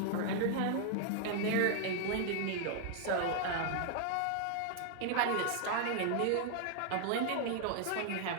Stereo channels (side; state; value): both; different; correlation 0.00